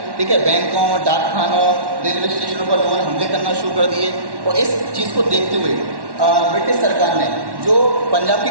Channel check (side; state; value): left; late; 1.1 ms